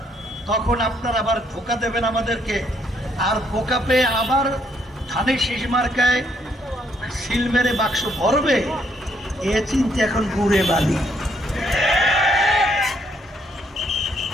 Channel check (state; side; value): normal; both; correlation 0.71